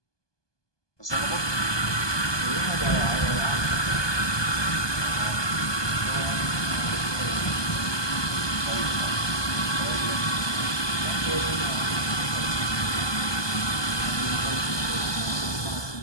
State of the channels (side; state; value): right; late; 1.2 ms